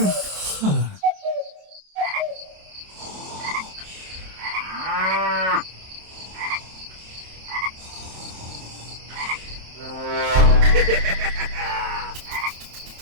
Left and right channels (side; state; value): left; late; 27 ms